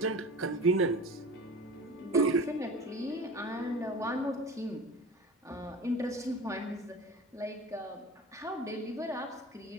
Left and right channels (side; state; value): both; normal; correlation 0.36